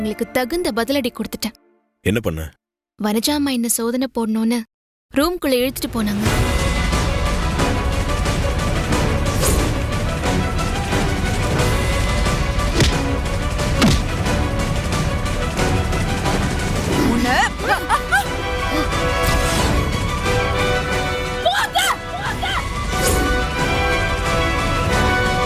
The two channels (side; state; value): both; identical; correlation 1.00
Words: தகுந்த பதிலடி கொடுத்துட்டேன். என்ன பண்ண? வனஜா அம்மா என்ன சோதனை போடணும்னு ரூம்குள்ள இழுத்துட்டு போனாங்க.